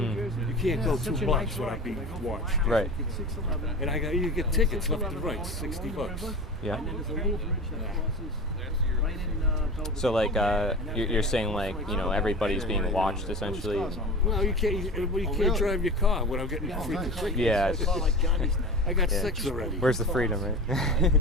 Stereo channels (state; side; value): normal; both; correlation 0.32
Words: You can't go 2 blocks without being watched. Right. And you get tickets left and right, $60. Yeah. So like you're saying like everybody's being watched essentially. Well, you can't drive your car without getting free tickets. Yeah. I got 6 already. Where's the freedom, right?